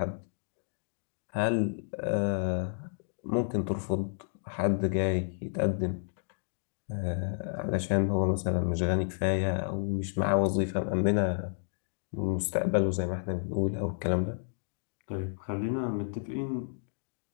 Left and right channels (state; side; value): silent; right; digital silence